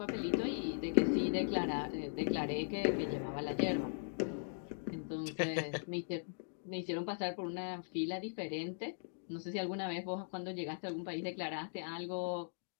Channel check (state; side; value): silent; right; digital silence